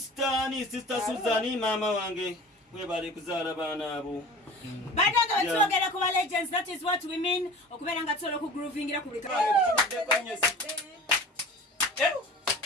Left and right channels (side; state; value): both; normal; correlation 0.39